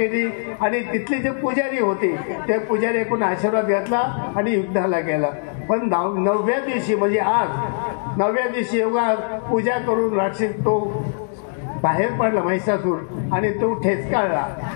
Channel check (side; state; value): right; silent; digital silence